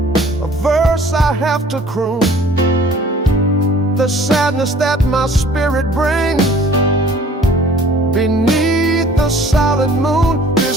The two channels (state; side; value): normal; both; correlation 0.52